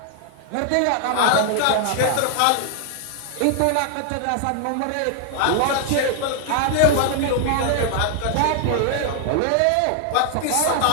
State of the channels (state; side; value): different; both; correlation 0.00